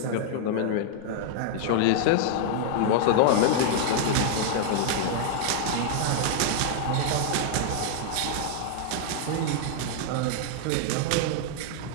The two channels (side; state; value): both; different; correlation -0.01